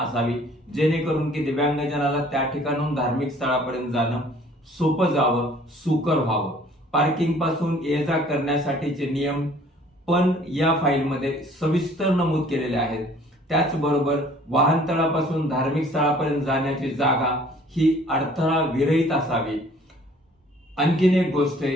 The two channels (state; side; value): normal; both; correlation 0.54